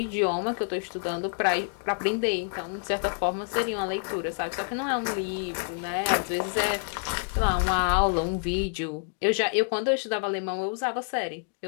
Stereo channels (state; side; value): silent; right; 60 dB below the other